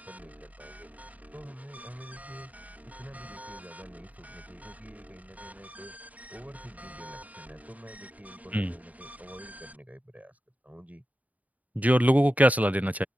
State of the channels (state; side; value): late; left; 0.073 ms